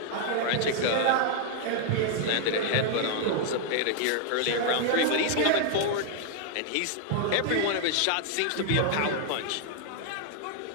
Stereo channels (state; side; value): different; both; correlation 0.00